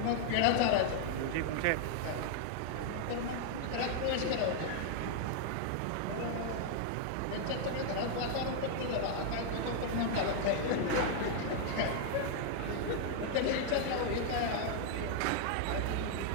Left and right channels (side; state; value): both; different; correlation 0.00